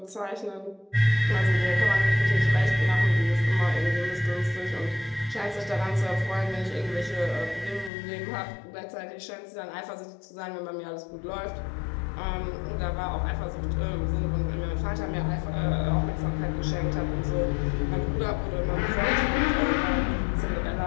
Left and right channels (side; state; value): right; drops out; at 7.9 s